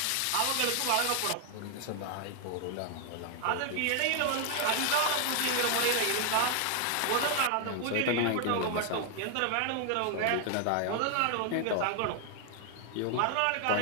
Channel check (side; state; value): both; different; correlation 0.00